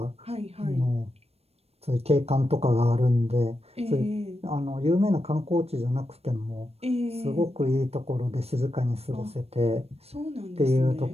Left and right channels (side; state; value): left; late; 0.29 ms